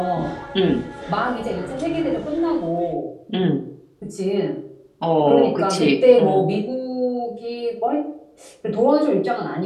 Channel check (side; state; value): both; identical; correlation 1.00